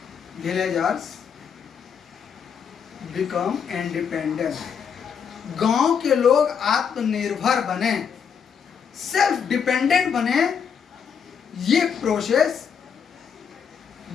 Villagers become independent. गांव के लोग आत्मनिर्भर बने, self dependent बने, ये process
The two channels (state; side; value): quieter; right; 7.0 dB